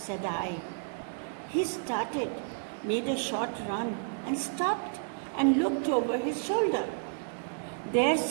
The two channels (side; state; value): left; silent; digital silence